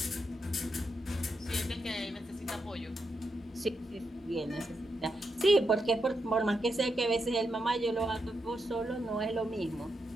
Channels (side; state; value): both; normal; correlation 0.84